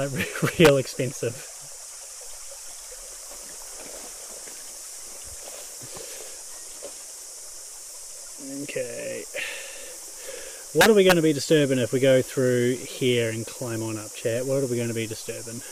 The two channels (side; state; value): both; identical; correlation 1.00